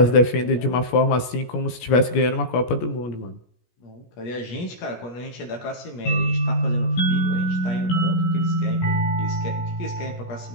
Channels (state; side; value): late; right; 17 ms